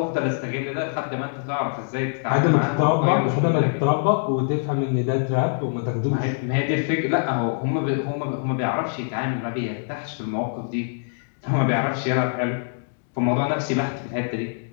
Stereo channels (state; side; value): silent; right; digital silence